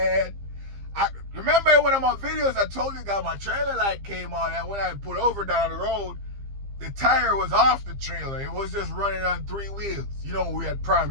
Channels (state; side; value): late; left; 15 ms